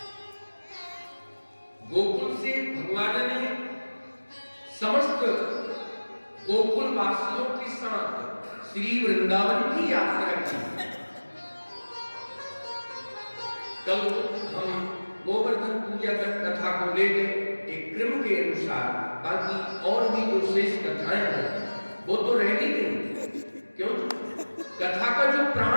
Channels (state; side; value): inverted; both; correlation -1.00